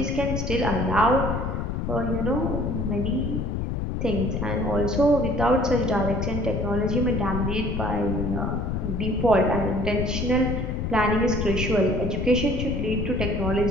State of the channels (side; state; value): left; noise; rumble, 1 dB below the sound